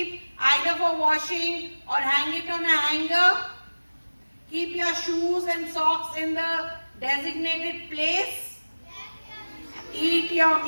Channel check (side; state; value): both; inverted; correlation -1.00